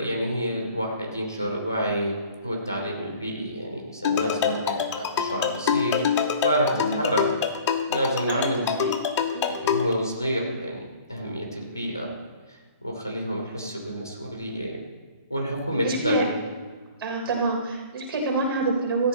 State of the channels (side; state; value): both; inverted; correlation -0.49